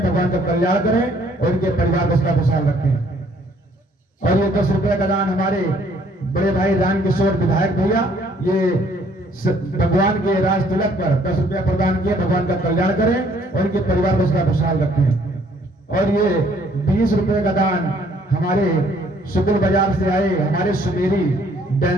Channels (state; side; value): normal; both; correlation 0.62